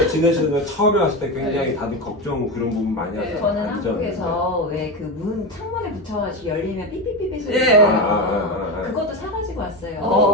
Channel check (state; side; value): normal; both; correlation 0.17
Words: 지내시는 처음에 왔을 때 굉장히 다들 걱정 그런 부분 많이 하잖아요. 저는 안전. 한국에서 왜 그 문 창문에 붙여가지고 열리면 삐삐삐삐 소리 예. 나요. 그것도 사가지고 왔어요.